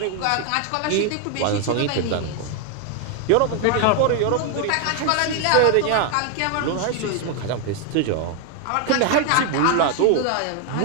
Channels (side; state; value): both; different; correlation 0.01